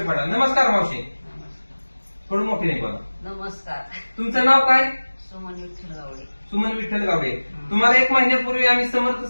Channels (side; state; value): both; inverted; correlation -1.00